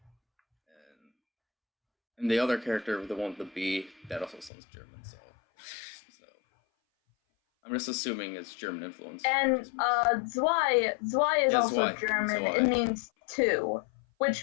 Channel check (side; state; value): right; drops out; at 4.5 s